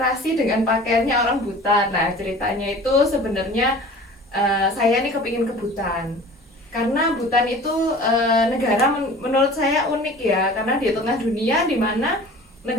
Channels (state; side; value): normal; both; correlation 0.43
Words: dengan pakaiannya orang Butan? Nah, ceritanya itu sebenarnya saya nih kepingin ke Butan. Karena Butan itu negara menurut saya unik ya, karena di tengah dunia di mana